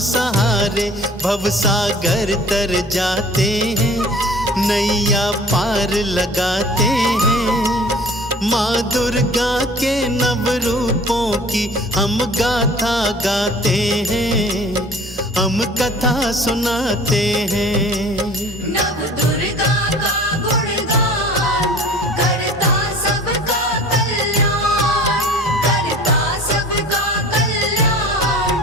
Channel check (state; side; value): normal; both; correlation 0.46